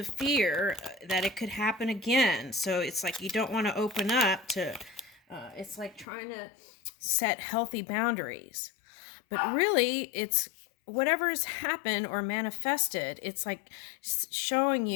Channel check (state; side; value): drops out; right; at 6.1 s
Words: fear that it could happen again. So it's like you don't want to open up to, it's like trying to set healthy boundaries. But really, it's whatever has happened or manifested, it's like showing